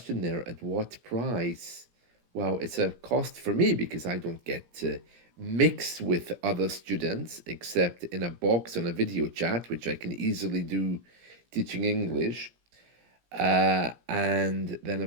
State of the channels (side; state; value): left; late; 17 ms